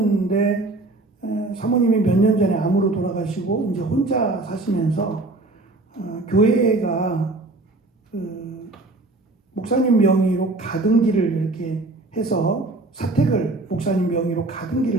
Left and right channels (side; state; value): left; quieter; 3.1 dB